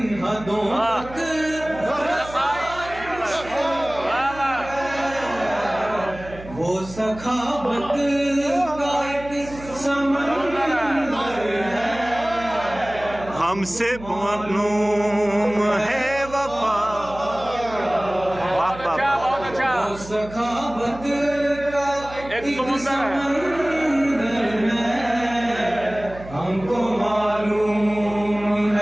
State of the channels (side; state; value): right; noise; hum, 16 dB below the sound